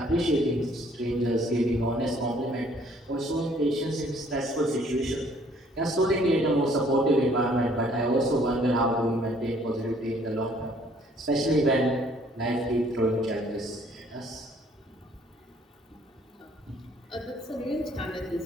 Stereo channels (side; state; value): both; normal; correlation 0.60